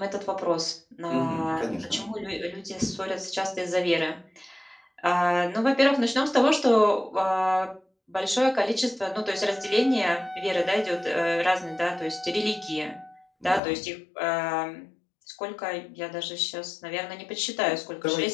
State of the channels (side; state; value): right; drops out; at 13.6 s